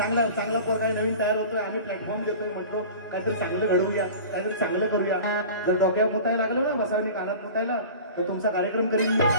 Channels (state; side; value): inverted; both; correlation -0.38